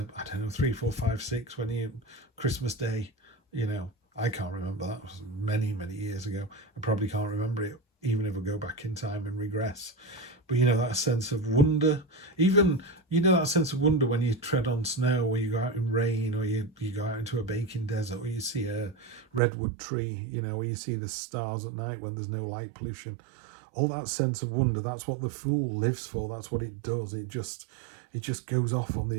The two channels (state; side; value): drops out; left; at 19.4 s